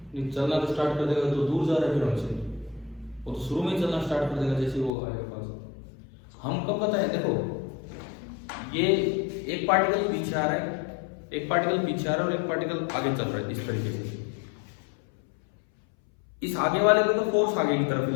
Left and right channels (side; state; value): right; drops out; at 4.9 s